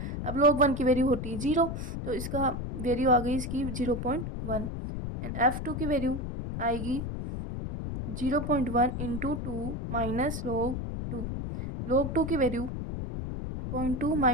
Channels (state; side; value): noise; left; rumble, 5 dB below the sound